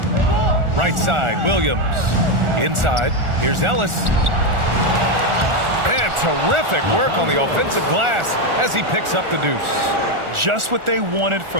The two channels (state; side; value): late; left; 1.4 ms